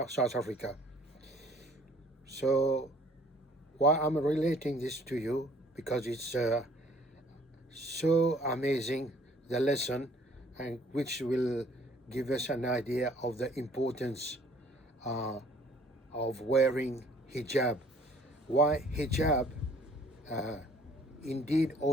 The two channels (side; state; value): both; normal; correlation 0.57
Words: Africa. So why I'm relating this to you, because it's so amazing, the lesson, and which will give us an idea of the importance uh, of wearing hijab. Why hijab uh, indeed